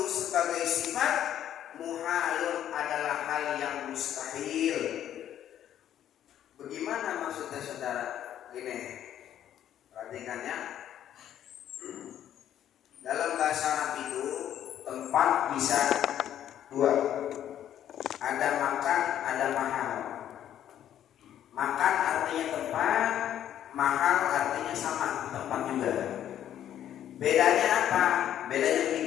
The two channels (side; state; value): right; quieter; 10.8 dB